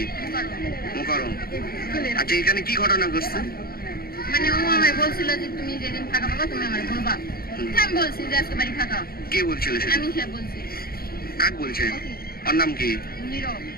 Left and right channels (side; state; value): right; late; 0.44 ms